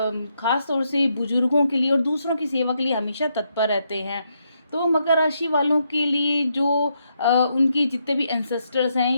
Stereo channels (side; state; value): both; inverted; correlation -0.79